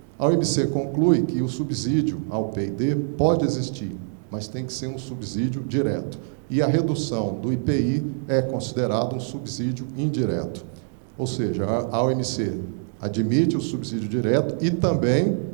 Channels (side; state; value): left; silent; digital silence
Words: A OMC conclui que o subsídio ao P&D pode existir, mas tem que ser um subsídio direto. E a redução do IPI é considerado um subsídio indireto. Ou seja, a OMC admite o subsídio direto e também,